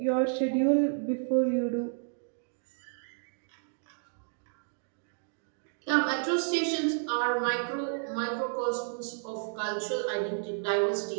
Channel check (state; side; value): silent; left; digital silence